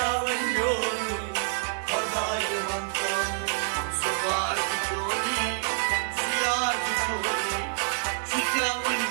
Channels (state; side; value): silent; left; 60 dB below the other